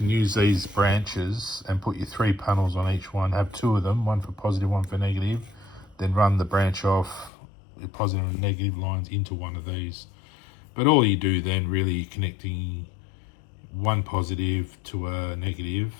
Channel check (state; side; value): drops out; right; at 7.3 s